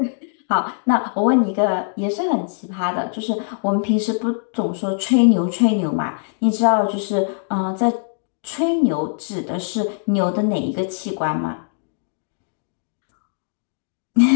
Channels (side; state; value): right; silent; digital silence